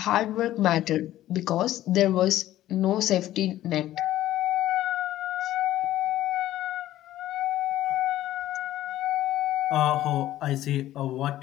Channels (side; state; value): right; quieter; 13.9 dB